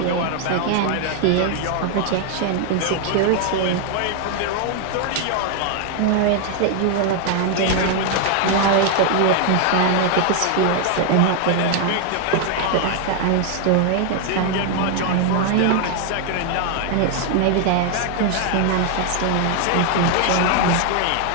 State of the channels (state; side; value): different; both; correlation 0.00